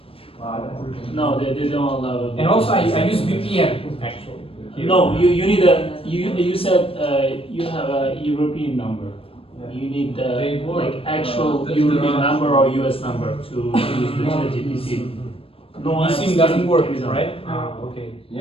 No, they don't allow it. And also I use VPN actually. Here. No, you need a you said you have a European number. You need like actual European number or US number to use the ChatGPT. No, SIM doesn't work, right? Okay.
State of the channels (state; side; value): late; right; 0.27 ms